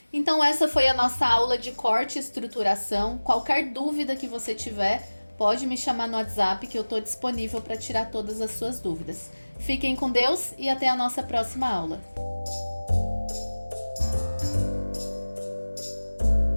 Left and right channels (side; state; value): both; inverted; correlation -1.00